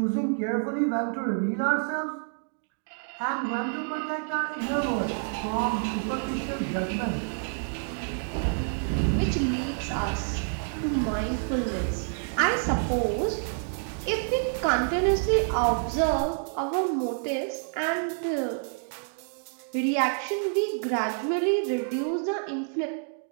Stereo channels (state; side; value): silent; left; 59 dB below the other